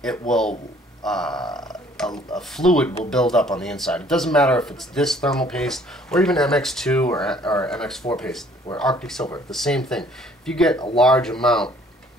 it will a fluid will build up on the inside. It doesn't matter if it's this thermal paste or even MX2 or MX4 paste or Arctic Silver, the same thing. If you get a large amount,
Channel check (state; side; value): normal; both; correlation 0.58